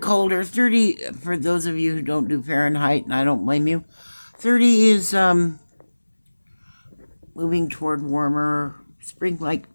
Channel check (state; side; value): inverted; both; correlation -1.00